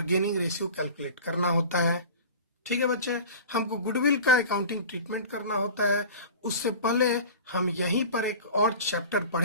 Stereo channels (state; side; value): inverted; both; correlation -0.37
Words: गेनिंग रेशियो कैलकुलेट करना होता है। ठीक है बच्चे, हमको गुडविल का अकाउंटिंग ट्रीटमेंट करना होता है। उससे पहले हम यहीं पर एक और चैप्टर